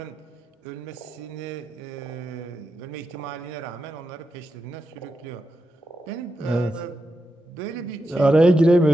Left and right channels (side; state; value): both; normal; correlation 0.87